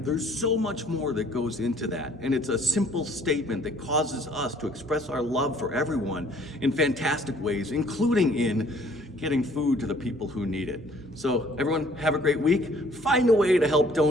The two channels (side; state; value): both; normal; correlation 0.58